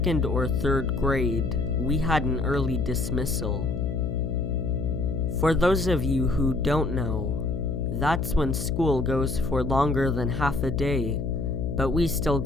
or 3rd grade, we had an early dismissal. For those of you who don't know, that's when school goes for longer than half a day, but we still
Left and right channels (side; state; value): left; noise; hum, 2 dB below the sound